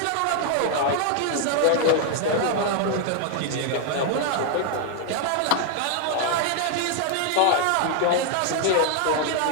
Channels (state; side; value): different; both; correlation 0.00